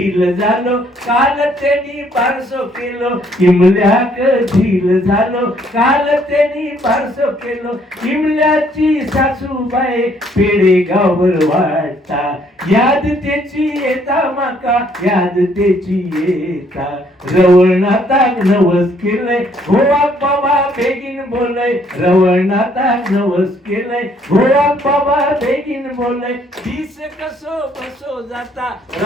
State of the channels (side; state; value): both; normal; correlation 0.66